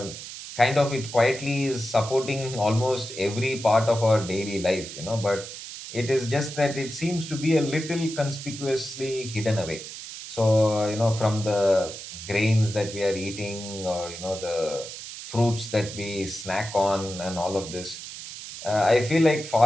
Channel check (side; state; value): right; noise; hiss, 11 dB below the sound